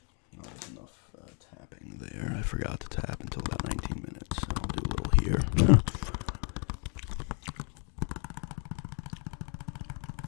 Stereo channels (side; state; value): right; quieter; 39.5 dB